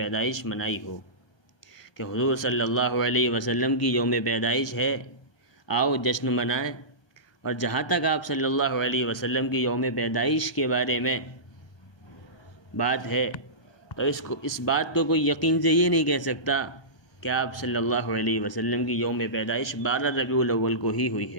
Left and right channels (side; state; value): right; late; 1.2 ms